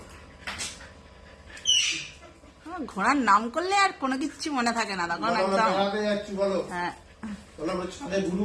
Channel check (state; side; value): identical; both; correlation 1.00